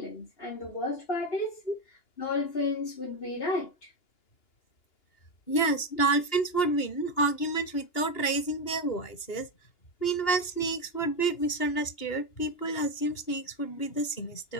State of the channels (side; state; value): right; late; 2.9 ms